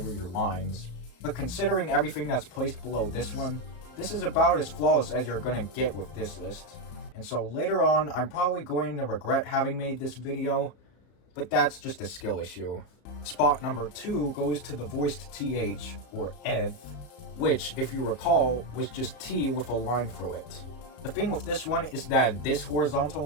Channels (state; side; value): late; right; 34 ms